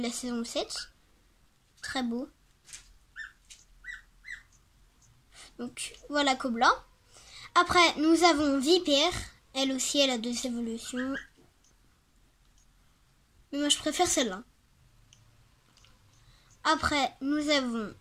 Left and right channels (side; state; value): both; identical; correlation 1.00